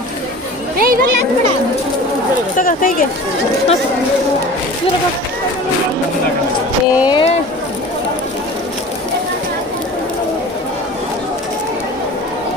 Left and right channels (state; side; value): normal; both; correlation 0.39